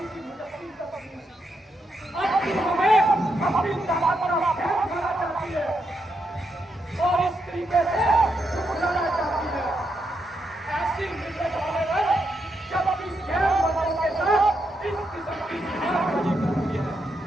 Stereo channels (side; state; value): both; normal; correlation 0.81